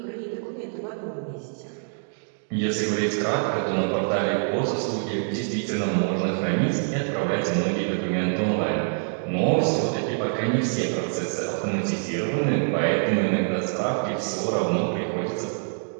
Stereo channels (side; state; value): left; silent; digital silence